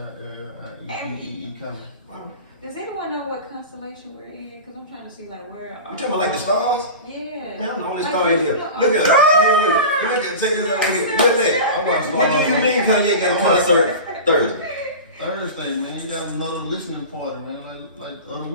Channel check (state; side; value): inverted; both; correlation -0.31